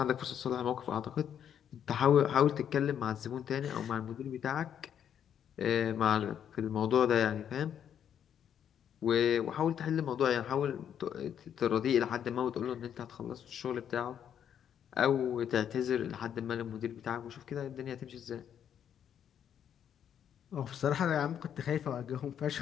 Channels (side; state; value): right; quieter; 9.1 dB